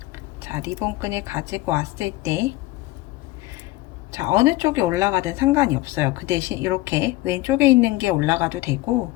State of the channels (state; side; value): quieter; right; 18.4 dB